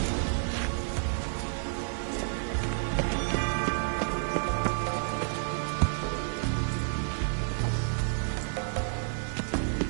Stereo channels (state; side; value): silent; left; digital silence